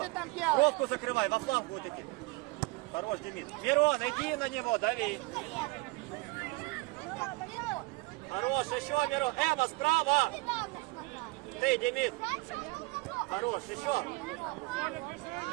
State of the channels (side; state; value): left; quieter; 24.2 dB